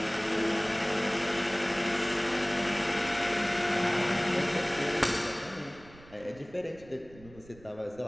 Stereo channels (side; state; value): right; noise; rumble, 22 dB below the sound